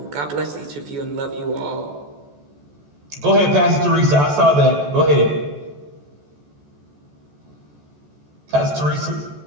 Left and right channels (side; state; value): left; late; 14 ms